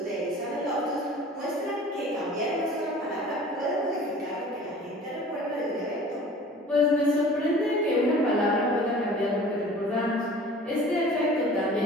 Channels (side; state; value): both; normal; correlation 0.45